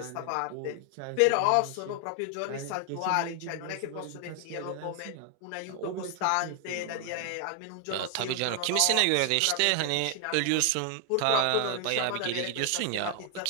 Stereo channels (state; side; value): different; both; correlation 0.00